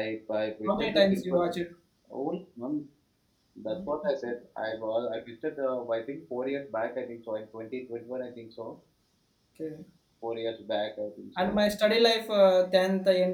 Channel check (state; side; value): identical; both; correlation 1.00